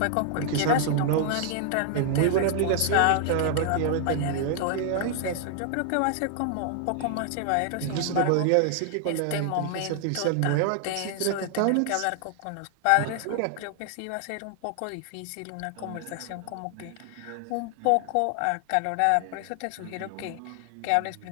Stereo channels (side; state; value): both; different; correlation 0.00